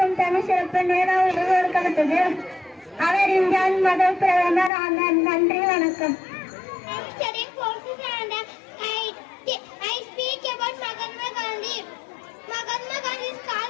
தனி சிறப்பு நேரு கொடுக்கப்பட்டது. அவர் இந்தியாவின் முதல் பிரதமர் ஆனார். நன்றி, வணக்கம். I speak about Mahatma Gandhi. Mahatma Gandhi is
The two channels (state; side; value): drops out; right; at 4.7 s